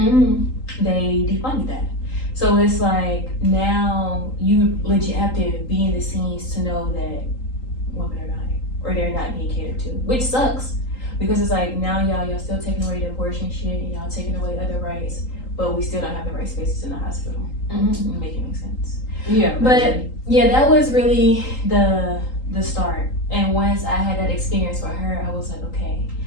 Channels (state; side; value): late; right; 3.8 ms